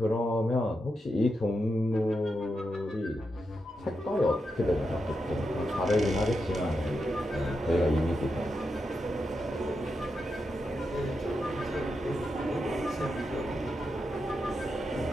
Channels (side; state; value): both; normal; correlation 0.86